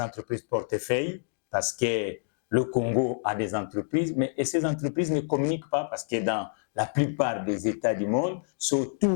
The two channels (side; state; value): right; silent; digital silence